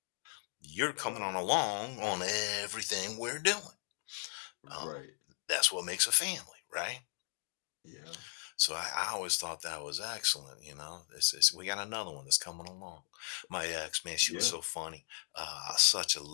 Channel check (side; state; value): right; silent; digital silence